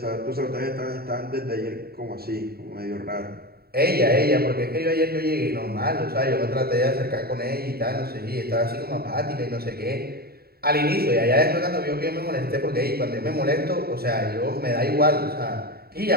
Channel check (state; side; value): late; left; 0.45 ms